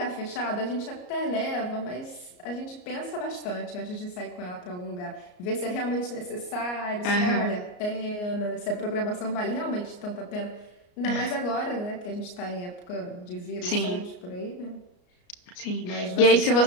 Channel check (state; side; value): late; right; 33 ms